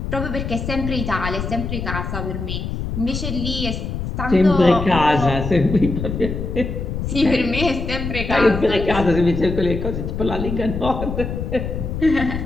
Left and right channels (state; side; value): noise; left; rumble, 4 dB below the sound